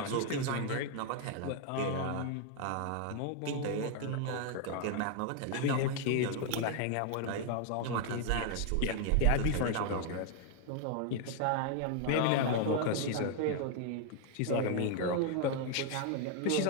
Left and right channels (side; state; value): both; different; correlation 0.01